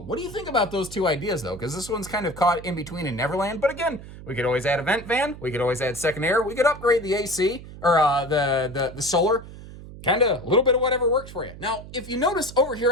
What do you think about those two ideas, though? Because this one's kind of caught in between in Neverland. But again, we could always add a vent fan. We could always add second air. We could upgrade the AC or the solar. Kind of a little bit of whatever works for you. Now, if you notice over here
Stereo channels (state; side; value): noise; right; hum, 15 dB below the sound